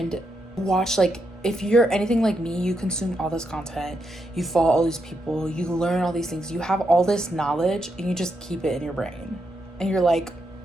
watch, if you're anything like me, you consume all this content, you follow all these people, you learn all these things, you have all this knowledge and you just keep it in your brain. And you're like,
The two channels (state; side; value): normal; both; correlation 0.82